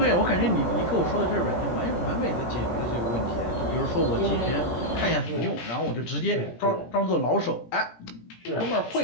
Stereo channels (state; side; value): late; right; 17 ms